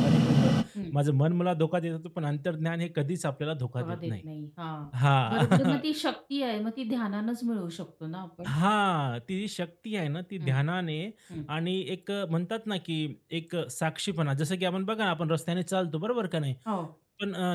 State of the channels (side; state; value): both; identical; correlation 1.00